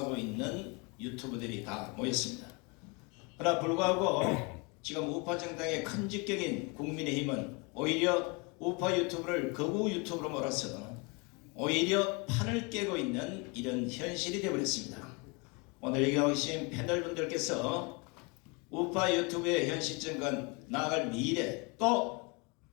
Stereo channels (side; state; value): right; quieter; 30.1 dB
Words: 있는 유튜브들이 다 모였습니다. 그러나 불구하고 지금 우파 정당의 큰 직격인 국민의힘은 오히려 우파 유튜브를 거구 유튜브로 몰아서 오히려 판을 깨고 있는 이런 현실이 되어버렸습니다. 오늘 여기 오신 패널분들께서 우파 유튜브의 현 시점과 나아갈 미래, 또